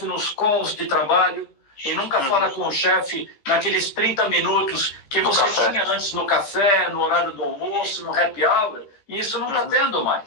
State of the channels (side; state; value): right; late; 15 ms